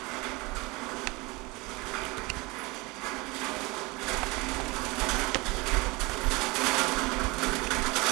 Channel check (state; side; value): quieter; left; 24.5 dB